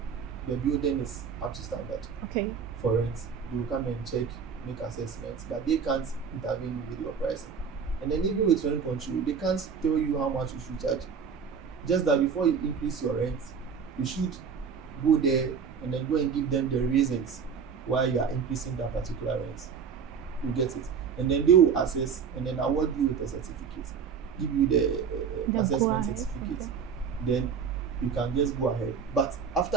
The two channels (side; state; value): left; quieter; 6.5 dB